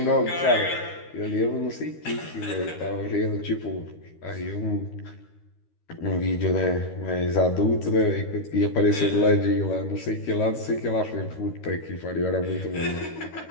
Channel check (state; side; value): late; right; 13 ms